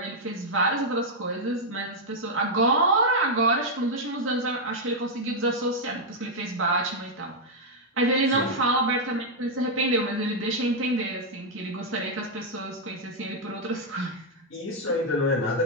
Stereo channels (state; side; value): normal; both; correlation -0.02